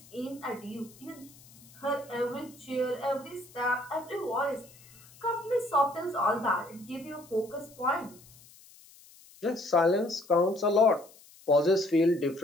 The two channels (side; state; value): left; noise; hiss, 24 dB below the sound